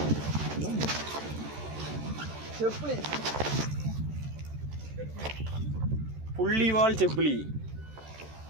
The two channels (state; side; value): late; left; 13 ms